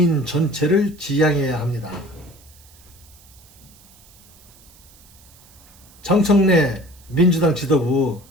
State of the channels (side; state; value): right; noise; hiss, 26 dB below the sound